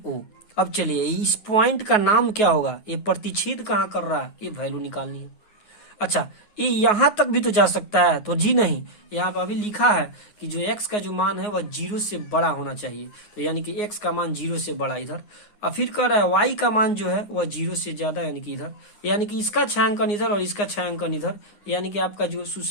अब चलिए इस पॉइंट का नाम क्या होगा? ये प्रतिच्छेद कहाँ कर रहा है? ये वैल्यू निकालनी है। अच्छा ये यहाँ तक भी तो जा सकता है, तो जी नहीं, यहाँ पर अभी लिखा है कि जो x का जो मान है वह 0 से बड़ा होना चाहिए। तो यानी कि x का मान 0 से बड़ा इधर, और फिर कह रहा है y का मान जो है वह 0 से ज्यादा यानी कि इधर, यानी कि इसका छायांकन इधर और इसका छायांकन इधर, यानी कि आपका जो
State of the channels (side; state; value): right; late; 9.5 ms